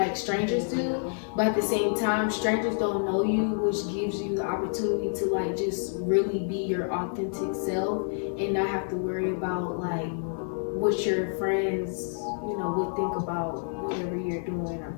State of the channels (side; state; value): right; silent; digital silence